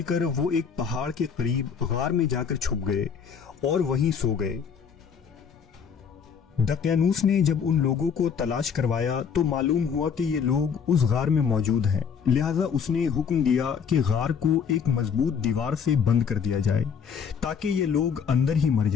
کر وہ ایک پہاڑ کے قریب غار میں جا کر چھپ گئے اور وہیں سو گئے۔ دقیانوس نے جب ان لوگوں کو تلاش کروایا تو معلوم ہوا کہ یہ لوگ اس غار میں موجود ہیں، لہٰذا اس نے حکم دیا کہ غار کو ایک مضبوط دیوار سے بند کر دیا جائے تاکہ یہ لوگ اندر ہی مر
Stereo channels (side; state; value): right; quieter; 6.8 dB